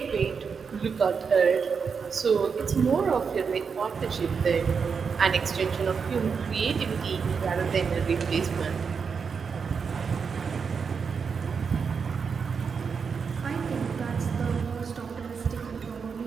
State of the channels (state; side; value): quieter; left; 5.9 dB